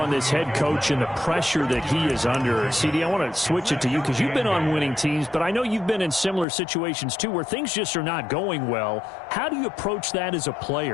this head coach and the pressure that he is under, CD, I want to switch it to you because you've been on winning teams, but I know you've been in similar situations too where things just are not going well. How do you approach that as a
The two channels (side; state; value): right; drops out; at 6.5 s